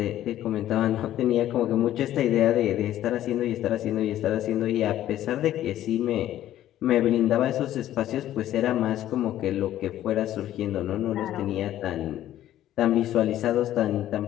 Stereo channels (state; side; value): quieter; right; 12.7 dB